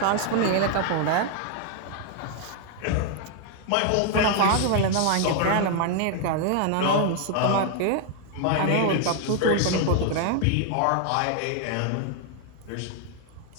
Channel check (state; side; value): different; both; correlation 0.00